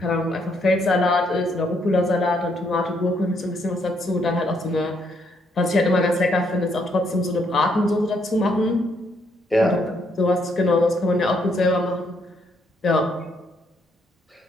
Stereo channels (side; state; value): both; normal; correlation 0.73